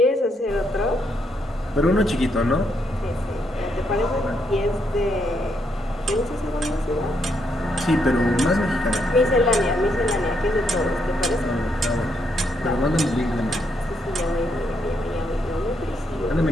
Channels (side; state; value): both; normal; correlation 0.77